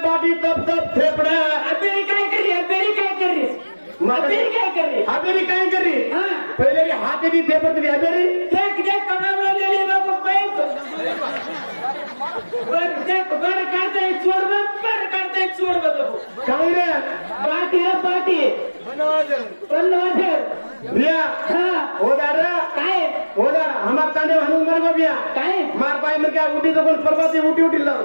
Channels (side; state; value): both; inverted; correlation -1.00